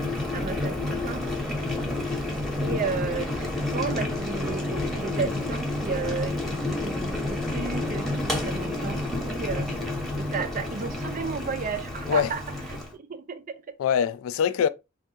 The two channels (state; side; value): normal; both; correlation 0.33